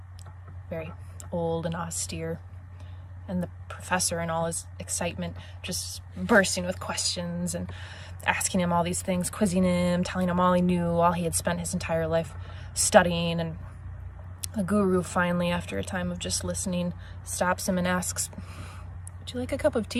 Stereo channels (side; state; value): both; identical; correlation 1.00